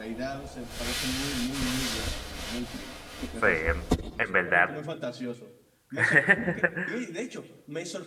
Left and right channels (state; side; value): identical; both; correlation 1.00